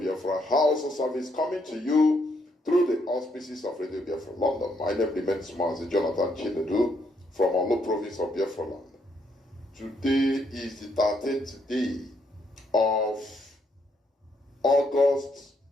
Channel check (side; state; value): both; normal; correlation 0.74